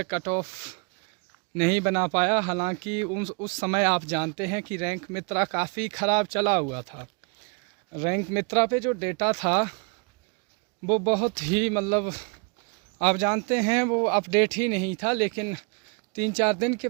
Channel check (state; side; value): quieter; left; 33.8 dB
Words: कट ऑफ नहीं बना पाया। हालांकि उस समय आप जानते हैं कि रैंक मित्रा काफ़ी ख़राब चला हुआ था। रैंक मित्रा पे जो डेटा था वो बहुत ही आप जानते हैं वो अपडेट ही नहीं था, लेकिन 3-4 दिन के